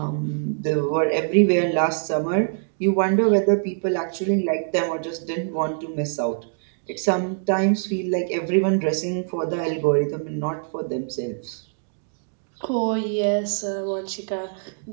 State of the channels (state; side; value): silent; left; digital silence